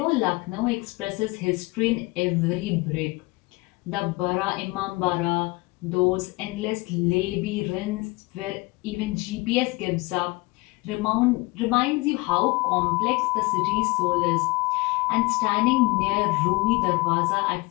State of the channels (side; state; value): right; quieter; 24.1 dB